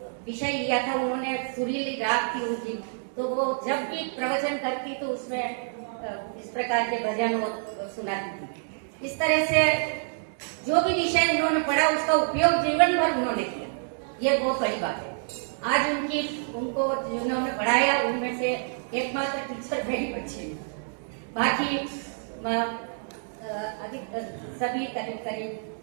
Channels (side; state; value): left; silent; digital silence